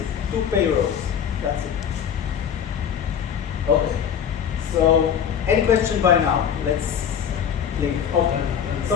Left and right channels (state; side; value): quieter; right; 8.2 dB